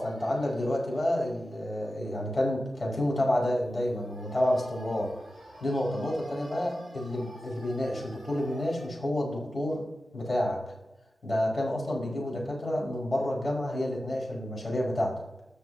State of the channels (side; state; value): both; normal; correlation 0.93